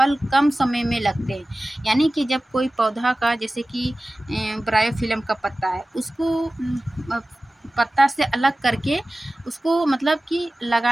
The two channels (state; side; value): normal; both; correlation 0.97